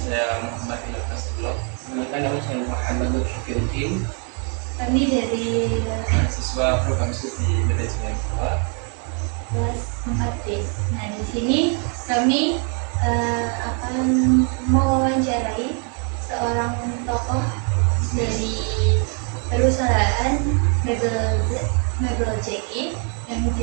Muhammad Ilham Nasrullah. Kenalkan, nama saya Muhammad Syafiuddin. Kami dari Mahasiswa program studi manajemen kedua kelas 4B. Nah, di sini kami akan mewawancarai seorang tokoh dari perusahaan mebel JI yang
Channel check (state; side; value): quieter; left; 39.9 dB